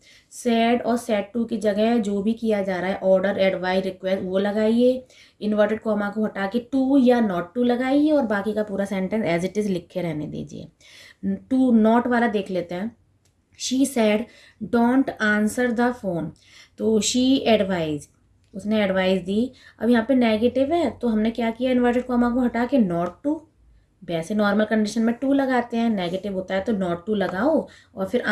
सैड और सैड टू की जगह जो भी किया जा रहा है, ऑर्डर, एडवाइस, रिक्वेस्ट, वो लगाइए। इन्वर्टेड कॉमा को हटा के टू या नॉट टू लगाइए, और बाकी का पूरा सेंटेंस एज इट इज़ लिखे रहने दीजिए। टू नॉट वाला देख लेते हैं। She said don't answer the phone, तो शी एडवाइज, उसने एडवाइस दी। अब यहाँ पे नेगेटिव है तो हमने क्या किया, इन्वर्टेड कॉमा को हटा के नॉट टू, वैसे नॉर्मल कंडीशन में टू लगाते हैं, नेगेटिव होता है तो नॉट टू लगाओ, और फिर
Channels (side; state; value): both; identical; correlation 1.00